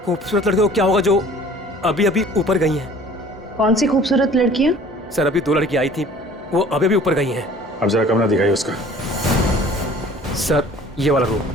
खूबसूरत लड़की को क्या होगा जो अभी अभी ऊपर गई हैं? कौन सी खूबसूरत लड़कियां? सर अभी 2 लड़की आई थी, वो अभी अभी ऊपर गई हैं। अब जरा कमरा दिखाइए उसका। सर ये वाला रूम।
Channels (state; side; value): normal; both; correlation 0.50